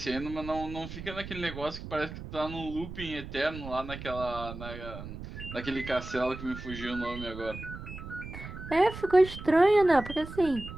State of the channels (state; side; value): noise; right; rumble, 11 dB below the sound